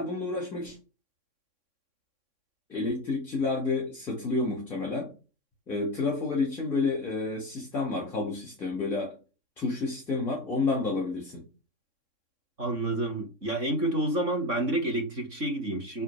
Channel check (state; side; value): late; left; 3.6 ms